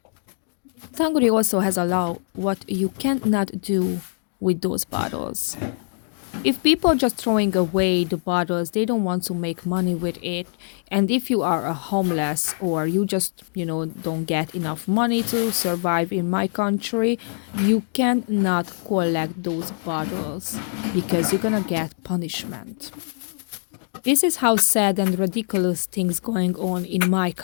Hungary also has a law what you cannot do with those bottles. If people are just throwing away the bottles, they don't want to make money with it. And if you are a homeless or you just, don't get enough money to survive in my country, you cannot collect those bottles because you're gonna get punishment. This is how sad and ridiculous things going on in my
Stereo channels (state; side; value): silent; right; 63 dB below the other